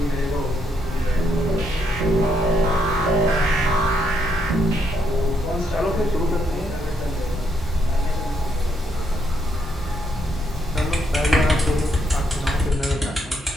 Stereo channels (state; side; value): normal; both; correlation 0.75